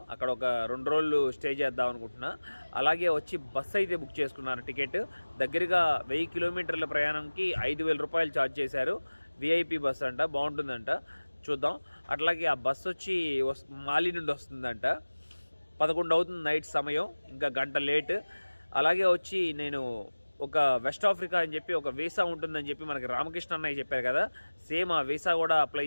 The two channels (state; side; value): inverted; both; correlation -1.00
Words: అక్కడ ఒక 2 రోజులు స్టే చేద్దాం అనుకుంటున్నా. అలాగే వచ్చి బస్సు అయితే బుక్ చేసుకున్నాను. టికెట్ దగ్గరగా 1000 కిలోమీటర్ల ప్రయాణంకి 5000 రూపాయలు ఛార్జ్ చేశారు. విఐపి బస్ అంట, బాగుంటుందంట, చూద్దాం. అట్లాగే ఆ బస్సు వచ్చి మాలి నుండి వస్తుందంట. 11 అవుతుంది నైట్ సమయం, ఇంకా గంట లేట్. అలాగే వచ్చి నేను ఒక వెస్ట్ ఆఫ్రికా అని చెప్పి ఒక వీసా ఉంటుందని చెప్పి మనకి రామకృష్ణ అన్నయ్య చెప్పారు కదా, సేమ్ ఆ వీసా కూడా అప్లై